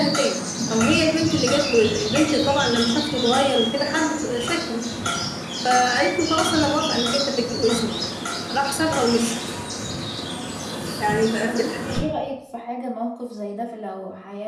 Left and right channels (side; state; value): both; identical; correlation 1.00